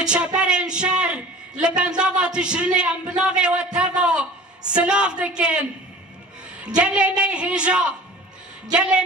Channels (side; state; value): both; normal; correlation 0.41